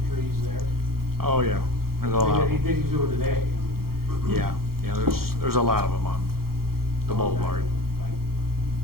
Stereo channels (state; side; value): late; left; 0.94 ms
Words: trees there? Oh, yeah. There's a lot of them. did do it today. Yeah, there's a lot of them on the boulevard.